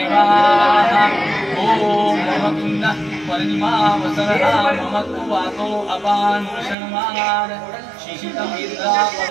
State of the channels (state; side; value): drops out; left; at 6.8 s